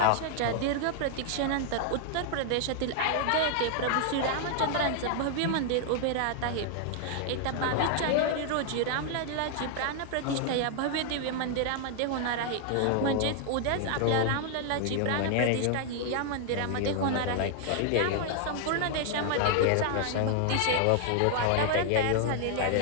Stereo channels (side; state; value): both; different; correlation 0.00